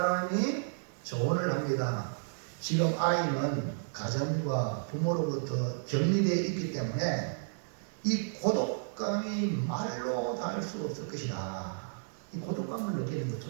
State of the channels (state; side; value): silent; left; digital silence